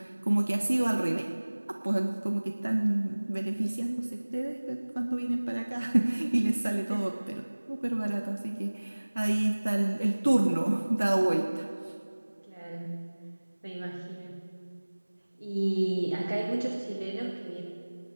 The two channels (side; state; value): both; inverted; correlation -1.00